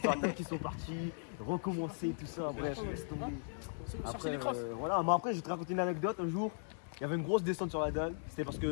après ils sont partis, recommencer, tout ça, bref, laisse tomber. Chercher Après, les crosses. voilà, mais après je vais te raconter une anecdote. Un jour, il y avait une grosse descente sur la dalle. C'était parce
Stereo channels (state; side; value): silent; right; 53 dB below the other